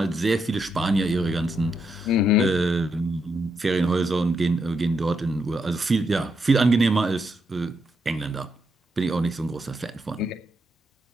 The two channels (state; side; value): normal; both; correlation 0.80